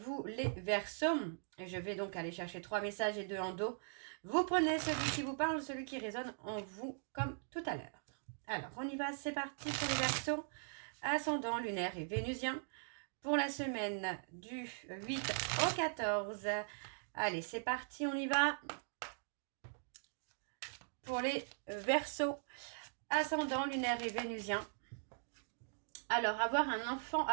vous, les Verseaux. Et je vais donc aller chercher 3 messages et 2 en dos. Vous prenez celui qui vous parle, celui qui résonne en vous, comme tout à l'heure. Alors, on y va, c'est parti pour les Verseaux. Ascendant lunaire et vénusien. Pour la semaine du 8 au 14. Allez, c'est parti, on y va. Pour les Verseaux. Ascendant lunaire et vénusien. Alors, avoir un enfant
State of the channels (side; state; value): left; silent; digital silence